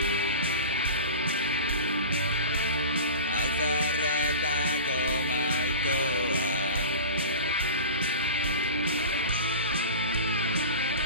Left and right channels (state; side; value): inverted; both; correlation -0.32